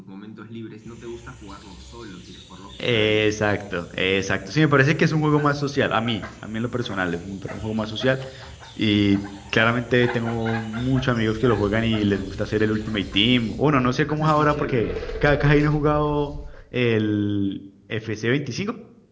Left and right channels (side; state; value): both; identical; correlation 1.00